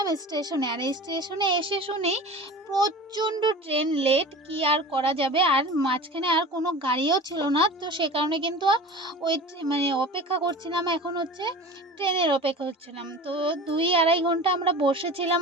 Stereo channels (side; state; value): both; normal; correlation 0.36